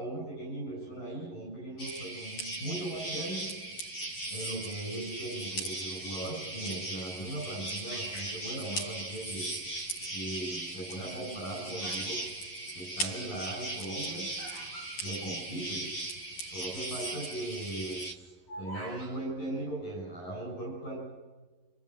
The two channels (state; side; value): late; right; 11 ms